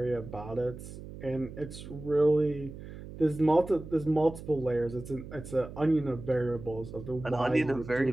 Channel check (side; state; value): right; noise; hum, 13 dB below the sound